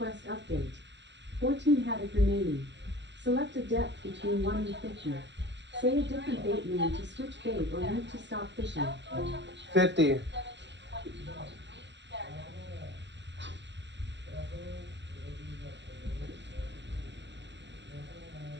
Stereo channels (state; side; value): late; left; 0.52 ms